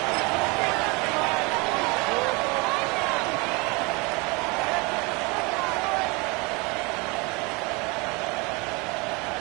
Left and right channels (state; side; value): quieter; left; 27.9 dB